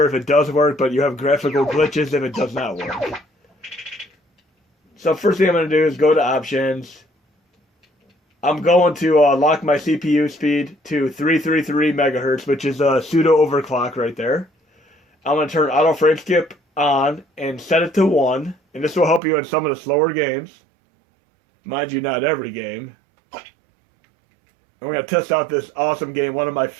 if it does work, but you have graphical glitches if it does not work. So first thing I'm going to do is go to options. I'm going to lock my CPU speed to 333 megahertz, which is a pseudo overclock right there. I'm going to turn auto frame skip on and set it to 1, and this will help you in some of the slower games. Mind you, not every game. And we're going to test out this awesome game, one of my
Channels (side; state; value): left; drops out; at 19.2 s